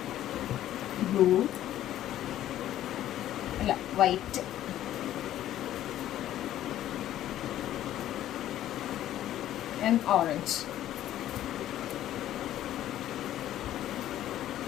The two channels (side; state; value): right; quieter; 12.6 dB